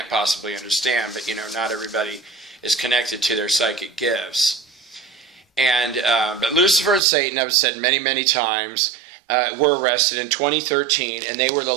possibly understand, but not everybody is connected to their psychic gifts. And but Lucifer and Satan, I've said many, many times, were arrested in 2013, and they were the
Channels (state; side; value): drops out; left; at 7.0 s